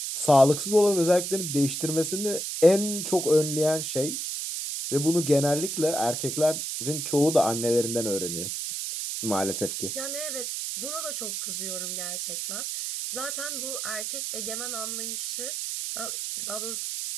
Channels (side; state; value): right; noise; hiss, 3 dB below the sound